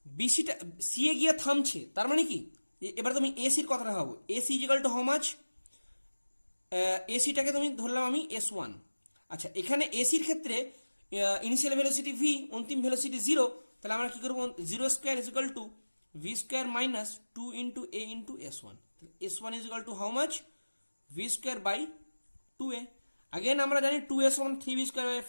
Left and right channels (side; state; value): both; inverted; correlation -1.00